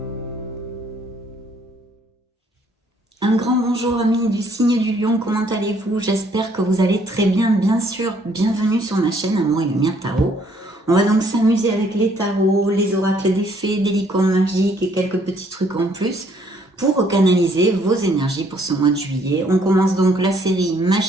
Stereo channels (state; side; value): normal; both; correlation 0.65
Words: grand bonjour amis du signe du lion, comment allez-vous? J'espère que vous allez très bien, bien sûr. Bienvenue sur ma chaîne Amour et Lumière Tarot. On va donc s'amuser avec les tarots, les oracles des fées, des licornes magiques et quelques petits trucs en plus pour canaliser vos énergies pour ce mois de juillet. On commence donc la série